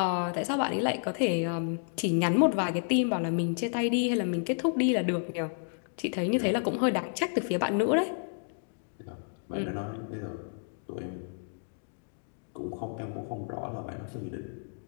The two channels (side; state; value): right; silent; digital silence